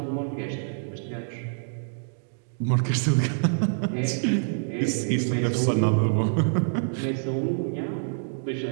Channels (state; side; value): silent; left; digital silence